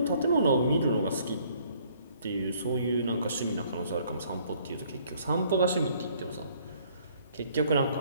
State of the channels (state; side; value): inverted; both; correlation -0.62